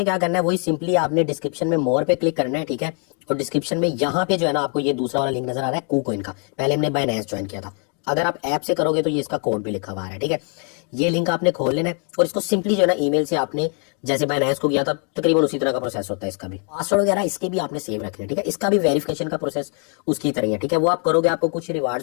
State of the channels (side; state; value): right; quieter; 38.1 dB